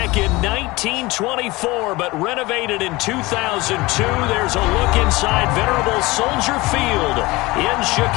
in 1924, but renovated in 2002. There's a look inside venerable Soldier Field in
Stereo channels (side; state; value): right; quieter; 21.6 dB